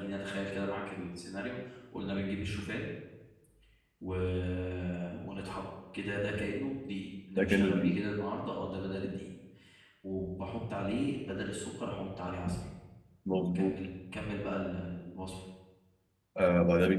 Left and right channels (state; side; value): identical; both; correlation 1.00